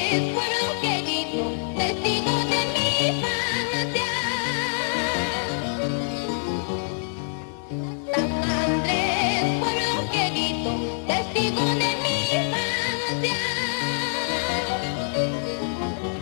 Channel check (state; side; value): silent; right; digital silence